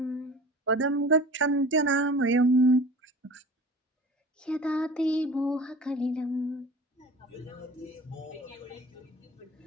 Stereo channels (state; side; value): normal; both; correlation 0.39